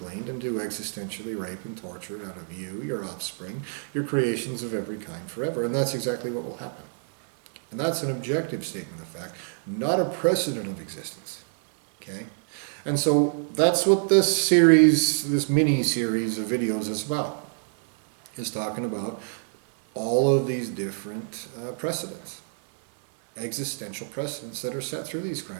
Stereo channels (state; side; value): silent; left; 60 dB below the other